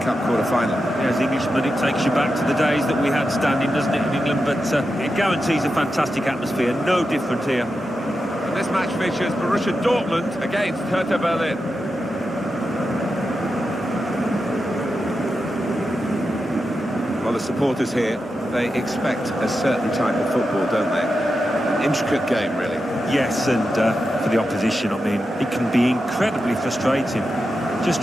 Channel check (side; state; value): both; normal; correlation 0.89